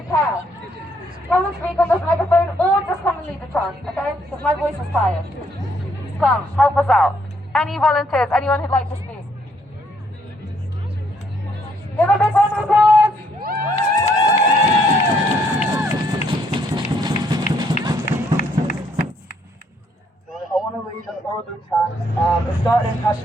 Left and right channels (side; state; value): both; normal; correlation 0.70